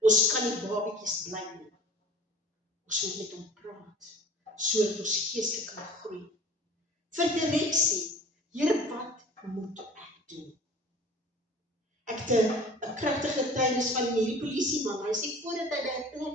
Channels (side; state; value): both; normal; correlation 0.45